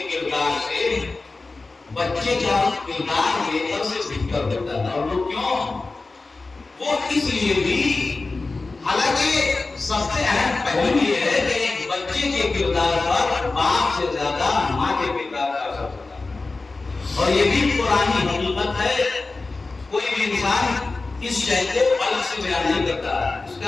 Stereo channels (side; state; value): right; quieter; 3.6 dB